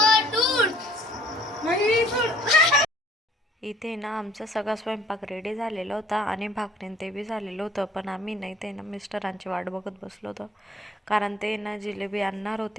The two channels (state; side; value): normal; both; correlation 0.57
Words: इथे ना आमचा सगळा स्वयंपाक रेडी झालेला होता आणि भाकरीन ते बी झालेलं होतं, पण आम्ही नाही ते ना मिस्टरांची वाट बघत बसलो होतो, कारण ते ना जिलेबी आणणार